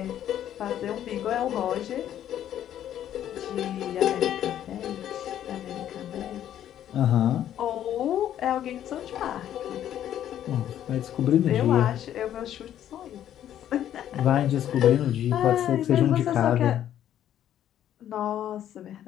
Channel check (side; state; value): right; quieter; 11.0 dB